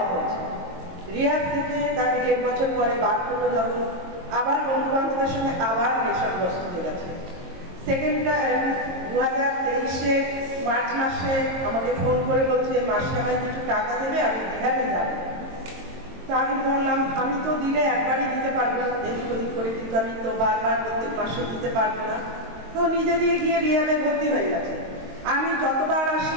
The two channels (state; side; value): late; left; 22 ms